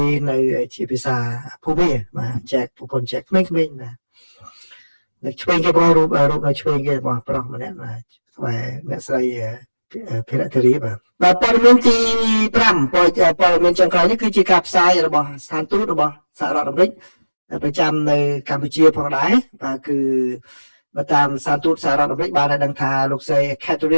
នៅជាភាសាភូមិបាទចែកប្រពន្ធចែកក្មេងៗបាទនៅឆ្វេងគេបងរូបនៅឆ្វេងគេបងប្រុសម្នាក់បាទស្បែអ្នកស្រីភិរតិរីបាទព័ត៌មានទី5ព័ត៌មានចុងក្រោយនេះគឺជាការផ្សាយរបស់ស្ថានទូតរបស់សហរដ្ឋអាមេរិកប្រចាំនៅកម្ពុជាផងដែរបាទគឺបើតាមស្ថានទូតសហរដ្ឋអាមេរិកបានឲ្យដឹងថាលោកស្រី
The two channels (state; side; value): inverted; both; correlation -1.00